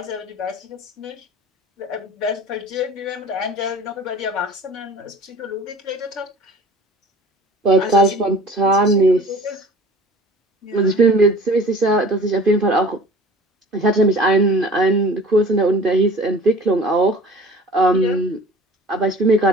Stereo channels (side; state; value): both; normal; correlation 0.44